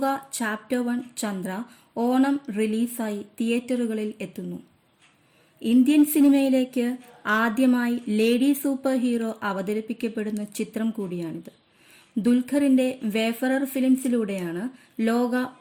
ചാപ്റ്റർ 1 ചന്ദ്ര ഓണം റിലീസായി തിയേറ്ററുകളിൽ എത്തുന്നു. ഇന്ത്യൻ സിനിമയിലേക്ക് ആദ്യമായി ലേഡി സൂപ്പർ ഹീറോ അവതരിപ്പിക്കപ്പെടുന്ന ചിത്രം കൂടിയാണിത്. ദുൽഖറിന്റെ വേഫറർ ഫിലിംസിലൂടെയാണ് ലോക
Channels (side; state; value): both; identical; correlation 1.00